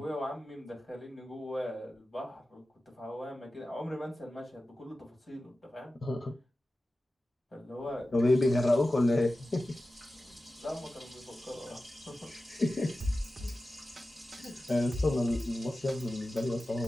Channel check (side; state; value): both; normal; correlation 0.94